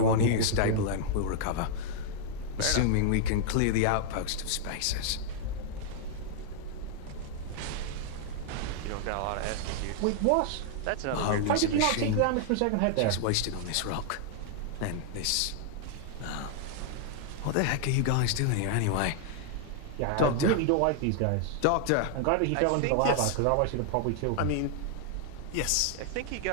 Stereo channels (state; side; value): different; both; correlation 0.00